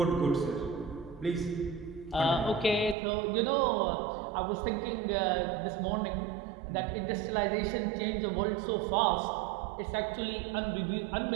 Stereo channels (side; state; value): left; drops out; at 3.0 s